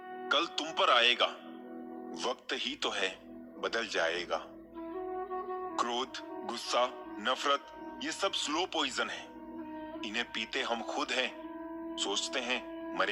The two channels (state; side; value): identical; both; correlation 1.00